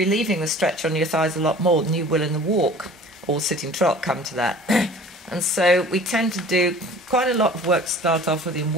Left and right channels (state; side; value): normal; both; correlation 0.45